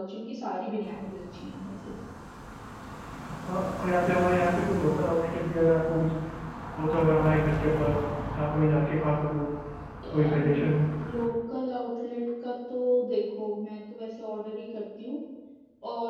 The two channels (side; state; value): both; identical; correlation 1.00